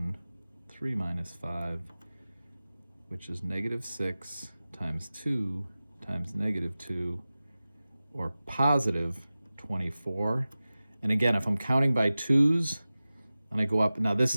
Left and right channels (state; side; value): inverted; both; correlation -0.96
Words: 3 minus 5, which is -6 times 2 times -2, or positive 24. And again, if I'm counting by 2's, and I go up, now this